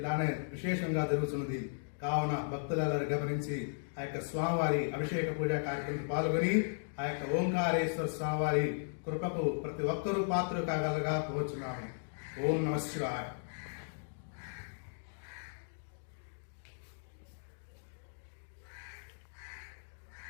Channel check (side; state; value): right; silent; digital silence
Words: విశేషంగా జరుగుతున్నది. కావున భక్తులందరూ గమనించి ఆ యొక్క స్వామివారి అభిషేక పూజా కార్యక్రమంలో పాల్గొని ఆ యొక్క ఓంకారేశ్వర స్వామివారి కృపకు ప్రతి ఒక్కరూ పాత్రలు కాగలగా కోరుచున్నాము. ఓం నమః శివాయ.